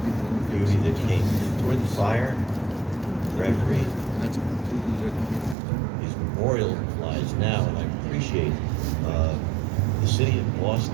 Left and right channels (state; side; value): drops out; left; at 5.6 s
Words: beauty that came toward the fire. Reverie is memorialized now, and I appreciate the city of